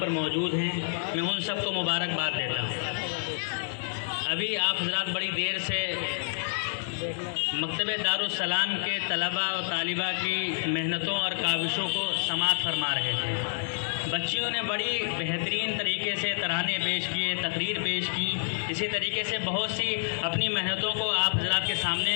موجود ہیں، میں ان سب کو مبارکباد دیتا ہوں۔ ابھی آپ حضرات بڑی دیر سے مکتبہ دارالسلام کے طلباء اور طالبہ کی محنتوں اور کاوشوں کو سماعت فرما رہے تھے۔ بچیوں نے بڑی بہترین طریقے سے ترانے پیش کیے، تقریر پیش کی، اسی طریقے سے بہت سی اپنی محنتوں کو آپ حضرات کے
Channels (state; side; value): silent; right; digital silence